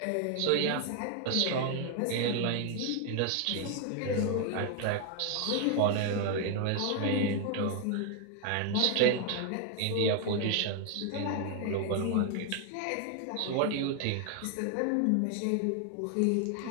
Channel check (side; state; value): both; different; correlation 0.00